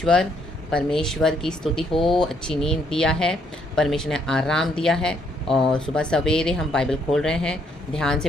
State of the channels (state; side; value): normal; both; correlation 0.71